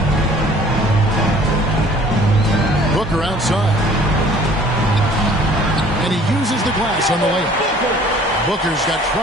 Booker outside. And he uses the glass on the layup. Booker's got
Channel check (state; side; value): normal; both; correlation 0.53